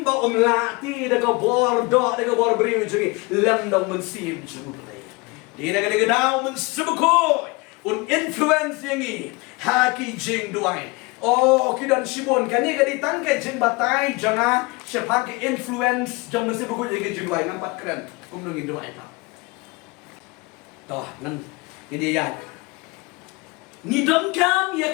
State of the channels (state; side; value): quieter; right; 26.0 dB